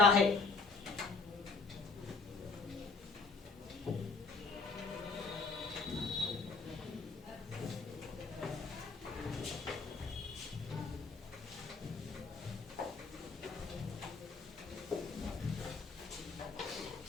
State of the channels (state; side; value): quieter; right; 4.2 dB